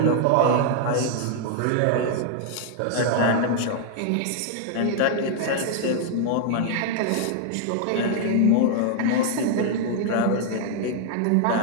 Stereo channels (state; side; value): different; both; correlation 0.00